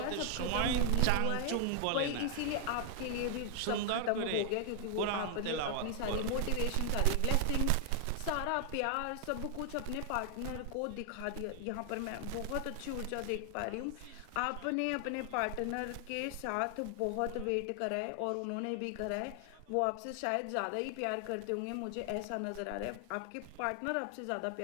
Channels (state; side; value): different; both; correlation 0.00